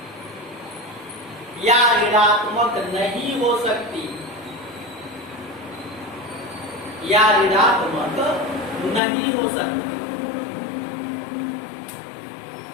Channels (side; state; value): right; drops out; at 9.0 s